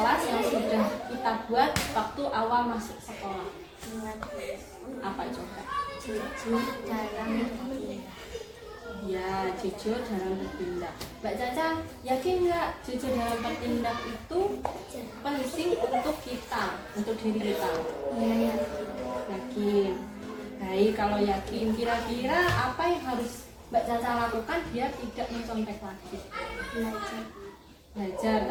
yang sudah kita buat waktu awal masuk sekolah? Ingat Bu. Apa coba? Jujur dalam bertindak. Ya, jujur dalam bertindak. Mbak Caca yakin nggak jujur dalam bertindak itu penting untuk kita, untuk diri kita? Iya ya. Yakin. Baik, kalau yakin, kira-kira apa yang harus Mbak Caca lakukan biar tidak mencontek lagi? Belajar. Belajar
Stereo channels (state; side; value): identical; both; correlation 1.00